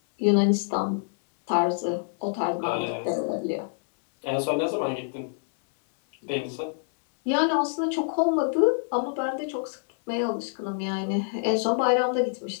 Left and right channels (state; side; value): silent; right; 61 dB below the other